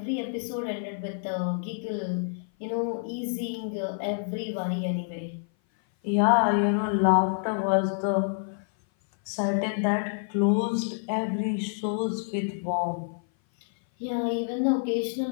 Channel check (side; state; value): right; silent; 57 dB below the other